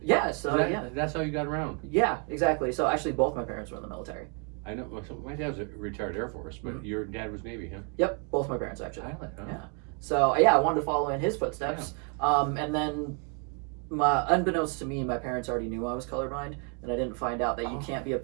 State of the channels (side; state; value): left; quieter; 38.7 dB